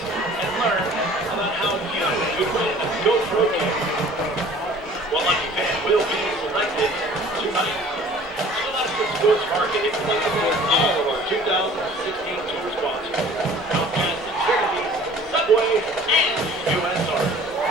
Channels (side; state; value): both; normal; correlation 0.49